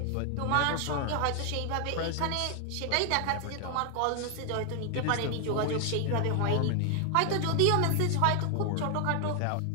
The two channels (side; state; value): both; different; correlation 0.00